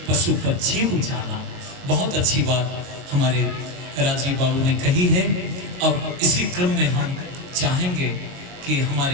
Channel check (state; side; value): late; left; 22 ms